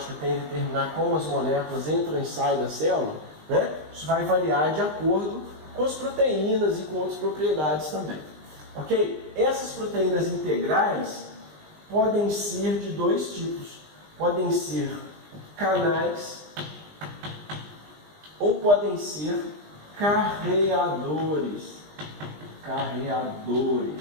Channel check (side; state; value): left; late; 20 ms